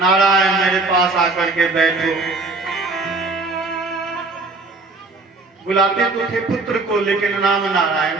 मेरे पास आकर के बैठो। बुलाते तो थे पुत्र को, लेकिन नाम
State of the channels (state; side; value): quieter; left; 3.5 dB